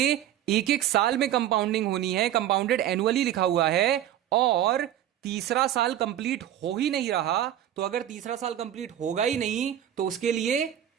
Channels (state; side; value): quieter; left; 11.5 dB